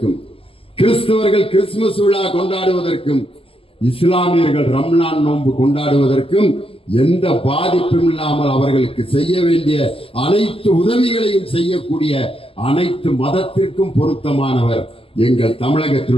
கிறிஸ்தவர்கள் கிறிஸ்துமஸ் விழா கொண்டாடுவதற்கும், இஸ்லாமியர்கள் ரம்லான் நோன்பு கொண்டாடுவதற்கும் எந்த பாதிப்பும் இல்லாமல் அவர்களுக்கு செய்ய வேண்டிய அனைத்து உதவிகளையும் செய்யக்கூடிய அனைத்து மதத்திற்கும் பொருத்தமானவர் எங்கள்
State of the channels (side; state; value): right; late; 0.27 ms